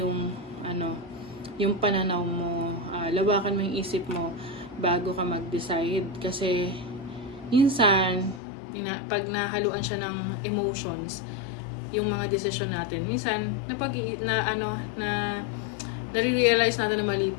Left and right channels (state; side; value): drops out; right; at 8.4 s